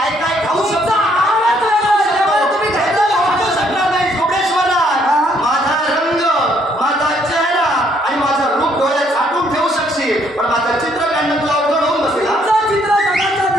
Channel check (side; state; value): both; normal; correlation 0.68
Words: काय खाऊ शकतो. तुमचा आहारच वेगळा आहे, त्यामुळे तुम्ही खायला खाऊ शकणार नाही. कुबडेश्वरा, माझा रंग, माझा चेहरा आणि माझं रूप डोळ्यात साठवून ठेवू शकशील, पण माझं चित्र काढणं तुला अवघड होऊन बसेल. तुमचं चित्र जगाच्या